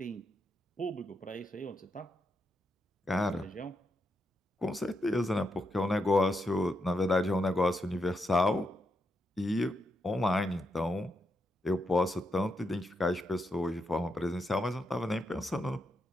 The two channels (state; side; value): normal; both; correlation 0.82